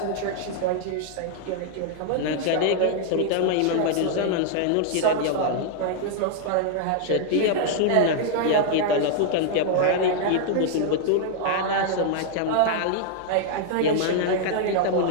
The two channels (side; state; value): both; different; correlation -0.01